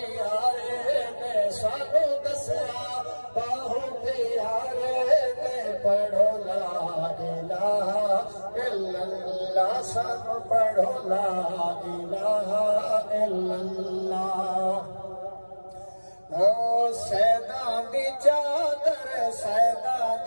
ने सानू दसिया बाहु प्यारे ने पढ़ो ला इलाहा इल्लल्लाह सानू पढ़ो ला इलाहा इल्लल्लाह। ओ सैदा दी चादर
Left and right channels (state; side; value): inverted; both; correlation -1.00